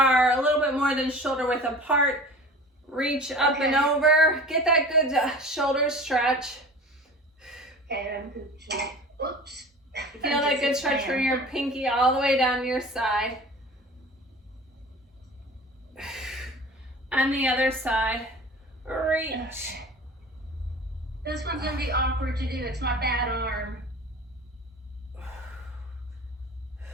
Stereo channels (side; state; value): both; normal; correlation 0.39